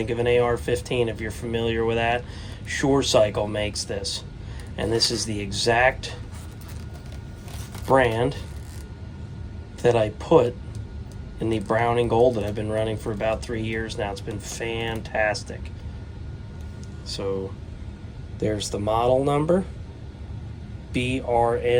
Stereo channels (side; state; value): both; identical; correlation 1.00